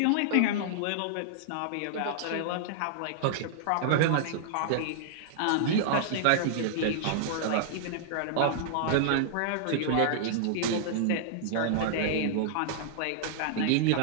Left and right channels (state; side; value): different; both; correlation -0.01